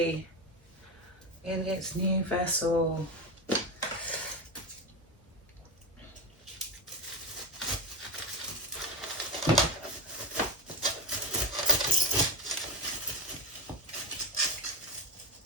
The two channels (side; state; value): both; normal; correlation 0.18